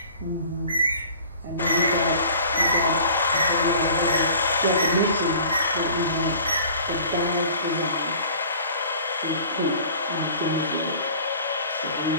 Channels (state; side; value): inverted; both; correlation -0.46